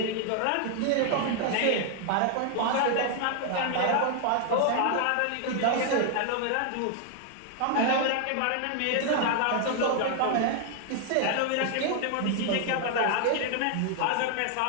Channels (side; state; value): both; different; correlation 0.00